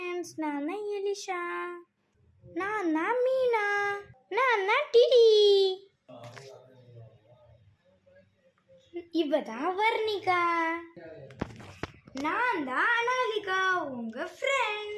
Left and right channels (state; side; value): identical; both; correlation 1.00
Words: ஃப்ரெண்ட்ஸ், நான் தான் எலிஷா, நான் தான் மீனா, நான் தான் டிடி, இவ தான் வர்ணிகா, நான் தான் அனாலிகா, உங்க